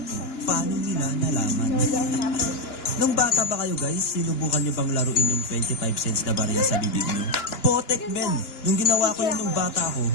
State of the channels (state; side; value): late; right; 2.9 ms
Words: mo, paano nila nalaman? Nung bata ba kayo guys, sinubukan nyo bang laruin yung 25 cents na barya sa bibig nyo? Potek men! Nung ginawa ko yun nung bata ko,